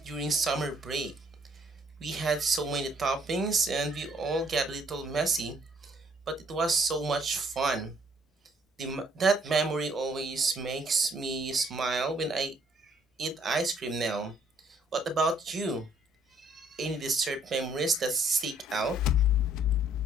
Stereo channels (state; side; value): normal; both; correlation 0.64